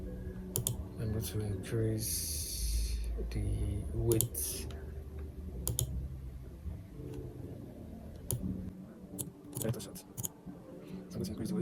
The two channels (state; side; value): identical; both; correlation 1.00